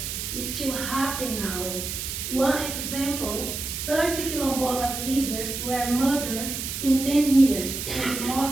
is still happening now. One example, 30 Quilombolas leaders were murdered in 10 years, and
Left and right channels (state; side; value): noise; right; hiss, 5 dB below the sound